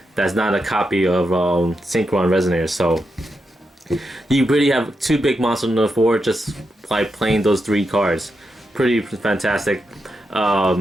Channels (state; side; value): normal; both; correlation 0.86